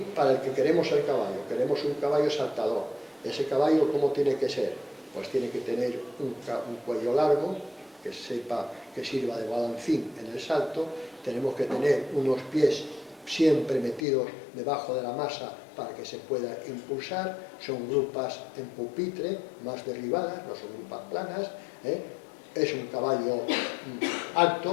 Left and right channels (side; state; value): right; drops out; at 14.0 s